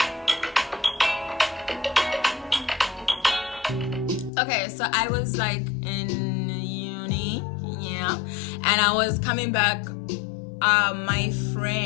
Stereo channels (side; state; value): right; drops out; at 4.3 s